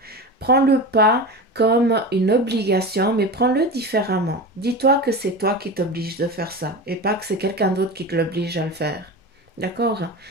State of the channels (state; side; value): normal; both; correlation 0.27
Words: Prends-le pas comme une obligation, mais prends-le différemment. Dis-toi que c'est toi qui t'oblige de faire ça et pas que c'est quelqu'un d'autre qui te l'oblige à le faire. D'accord?